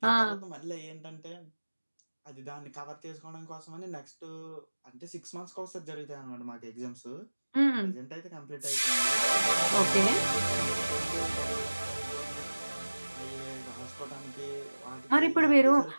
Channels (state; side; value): inverted; both; correlation -1.00